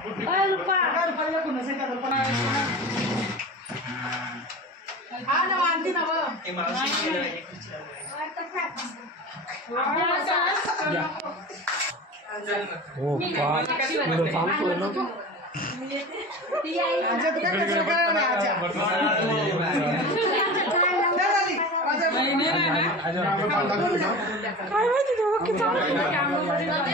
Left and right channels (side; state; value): both; normal; correlation 0.33